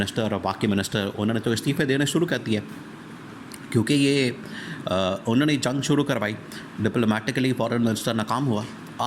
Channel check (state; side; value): identical; both; correlation 1.00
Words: और बाकी मिनिस्टर, उन्होंने तो इस्तीफ़े देने शुरू कर दिए, क्योंकि ये उन्होंने जंग शुरू करवाई। डिप्लोमेटिकली फॉरेन मिनिस्टर नाकाम हुआ।